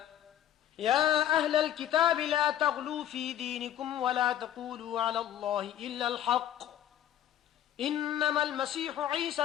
يا أهل الكتاب لا تغلوا في دينكم ولا تقولوا على الله إلا الحق إنما المسيح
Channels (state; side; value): quieter; right; 11.3 dB